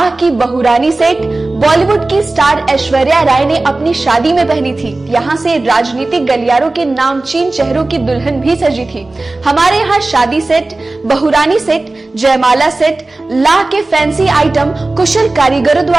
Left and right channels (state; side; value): quieter; left; 3.1 dB